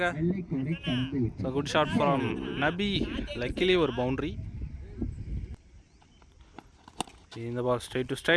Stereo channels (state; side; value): identical; both; correlation 1.00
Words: So good shot from Nabi. Luckily ஒரு பவுண்ட்ரி. இந்த ball straight to